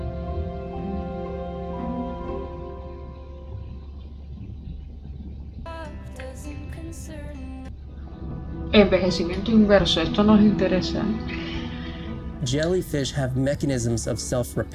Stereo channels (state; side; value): identical; both; correlation 1.00